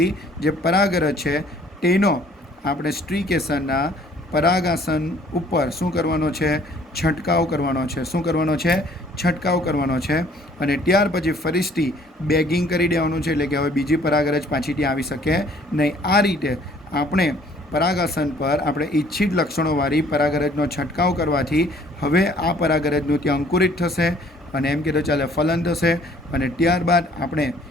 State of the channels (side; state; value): both; normal; correlation 0.58